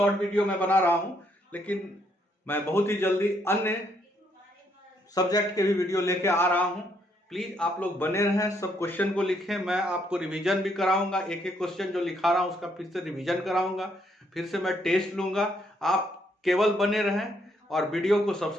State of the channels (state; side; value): normal; both; correlation 0.72